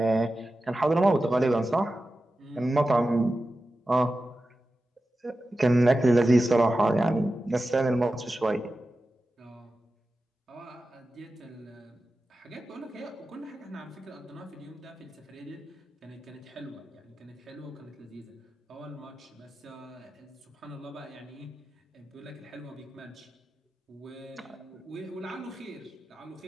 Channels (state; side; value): normal; both; correlation 0.93